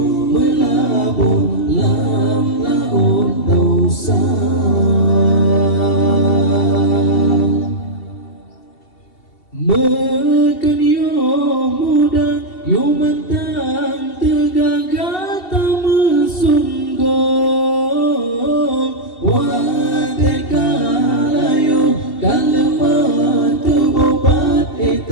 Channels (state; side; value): late; right; 2.7 ms